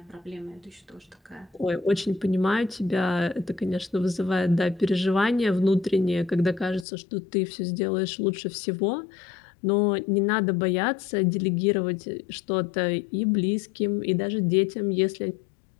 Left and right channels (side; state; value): right; drops out; at 6.9 s